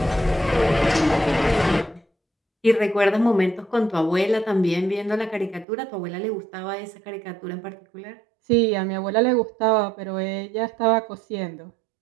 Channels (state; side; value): drops out; left; at 5.7 s